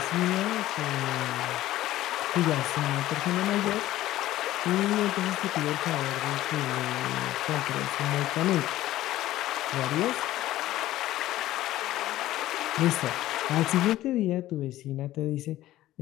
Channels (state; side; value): quieter; right; 14.9 dB